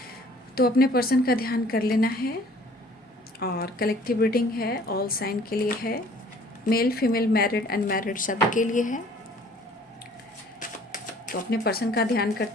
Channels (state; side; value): normal; both; correlation 0.54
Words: तो अपने पर्सन का ध्यान कर लेना है। और कलेक्टिव रीडिंग है, ऑल साइन के लिए है, मेल फीमेल मैरिड अनमैरिड सभी के लिए है। तो अपने पर्सन का ध्यान